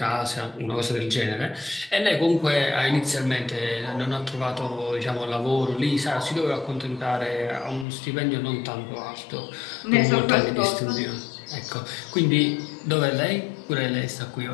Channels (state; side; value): drops out; right; at 7.9 s